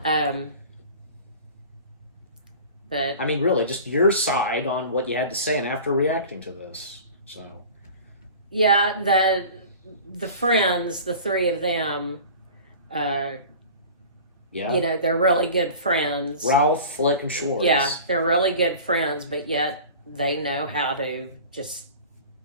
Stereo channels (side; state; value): both; inverted; correlation -0.40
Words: But I mean, really, just your side on what you had to say, and after reacting to this, so. Yeah, the friends, the three of them. Yeah. They're really good friends. Ralph, Flick, and Schwartz. Yeah, they're really good friends, but yet they know how to just